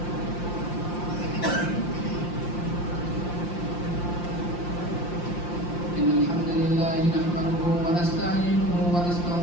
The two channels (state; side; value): late; right; 5.7 ms